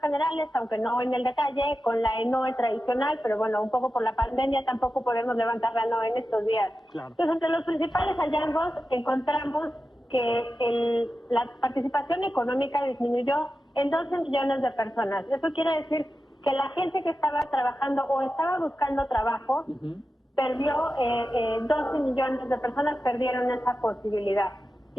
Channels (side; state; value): both; normal; correlation 0.92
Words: aunque no en el detalle, con la NOE tradicional, pero bueno, un poco por la pandemia tampoco podemos levantar la NOE en estos días. Claro. Entonces, entre los principales hallazgos encontramos que la participación económica disminuyó en 12 millones de personas. Eso quiere decir que la gente que estaba trabajando o estaba buscando trabajo perdió, 12 millones de personas perdieron esa posibilidad.